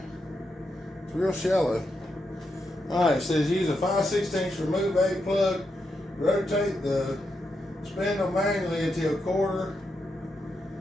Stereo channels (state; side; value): normal; both; correlation 0.84